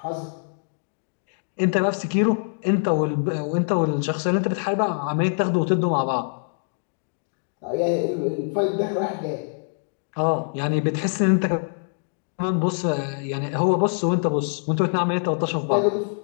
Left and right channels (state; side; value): silent; right; digital silence